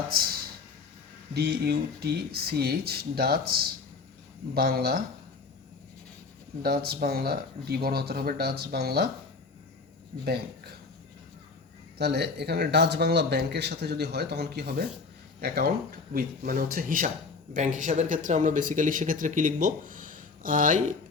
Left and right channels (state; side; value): quieter; right; 4.4 dB